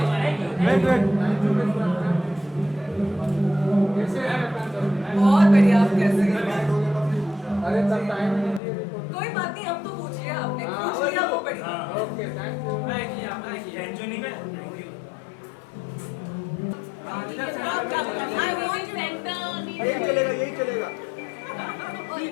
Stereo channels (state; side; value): drops out; right; at 8.6 s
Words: बहुत बढ़िया. आप कैसे हैं? अरे तब टाइम नहीं दिए कोई बात नहीं. हम तो पूछ लिया आपने. पूछ लिया वो बढ़िया. Okay thank you. I want यही चलेगा.